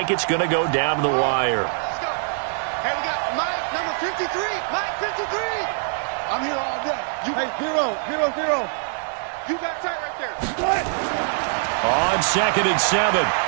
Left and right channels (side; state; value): left; silent; 57 dB below the other